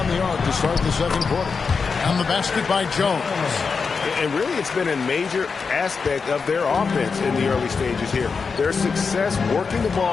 the arc to start the second quarter. And the basket by Jones. And really, it's been a major aspect of their offense in the early stages here. Their success working the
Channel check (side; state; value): right; quieter; 5.2 dB